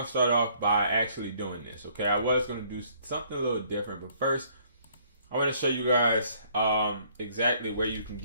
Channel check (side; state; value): both; inverted; correlation -0.63